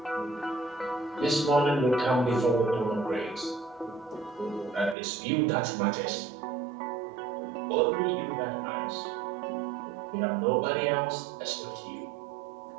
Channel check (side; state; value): left; drops out; at 5.0 s